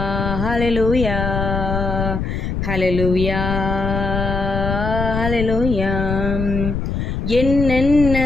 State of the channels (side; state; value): left; noise; rumble, 3 dB below the sound